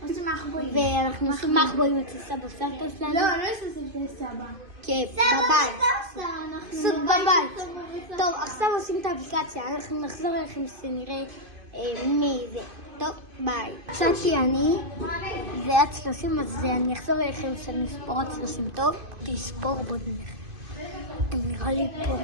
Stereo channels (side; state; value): left; late; 2.5 ms